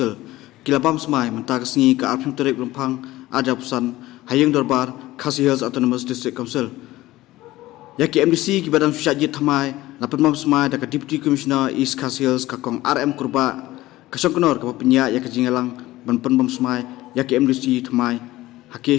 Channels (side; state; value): right; quieter; 17.1 dB